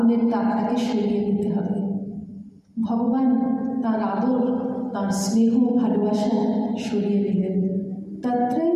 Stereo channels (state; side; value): identical; both; correlation 1.00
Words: তাপটাকে সরিয়ে দিতে হবে। ভগবান তার আদর, তার স্নেহ, ভালোবাসা সরিয়ে দিলেন।